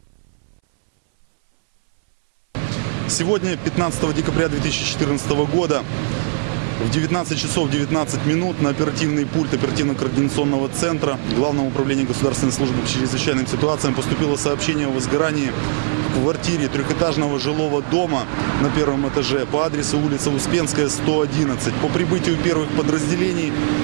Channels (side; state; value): left; silent; 63 dB below the other